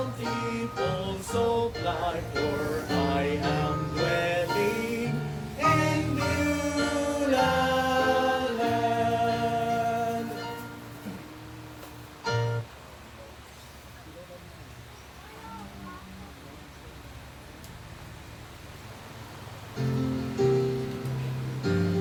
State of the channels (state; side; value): identical; both; correlation 1.00